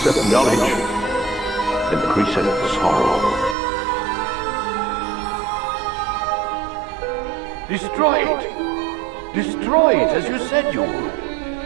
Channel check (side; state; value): left; drops out; at 3.6 s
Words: knowledge increaseth sorrow. Destroy it! Destroy it as you said you would.